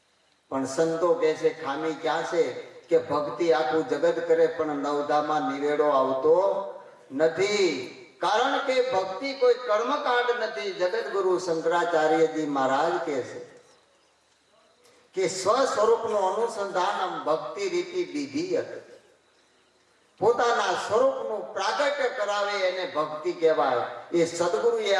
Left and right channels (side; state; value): both; identical; correlation 1.00